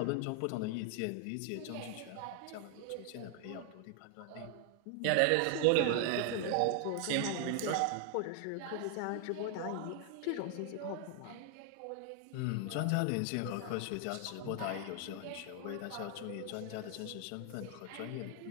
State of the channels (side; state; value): both; different; correlation 0.00